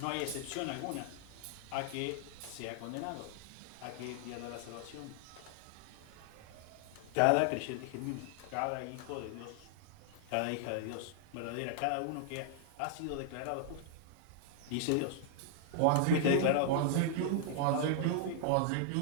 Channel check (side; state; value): both; different; correlation -0.01